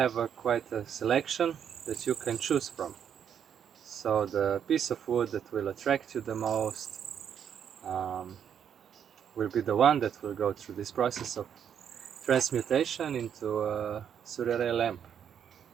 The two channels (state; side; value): quieter; left; 8.4 dB